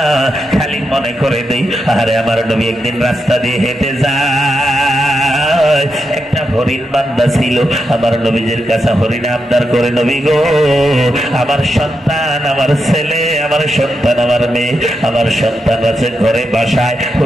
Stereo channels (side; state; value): both; normal; correlation 0.85